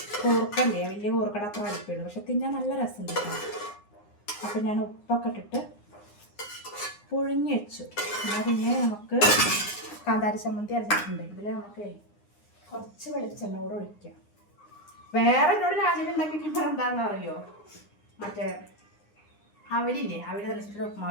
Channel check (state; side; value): late; right; 9.8 ms